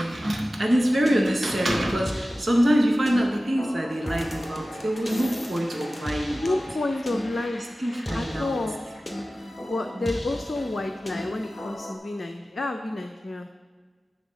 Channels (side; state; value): both; normal; correlation 0.96